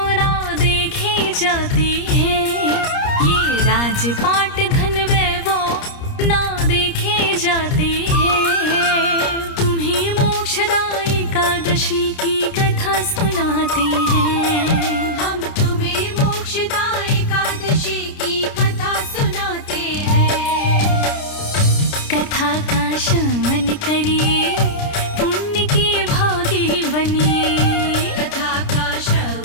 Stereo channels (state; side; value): late; right; 30 ms